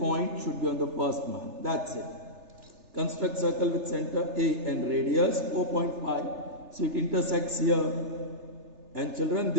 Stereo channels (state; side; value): late; left; 3.3 ms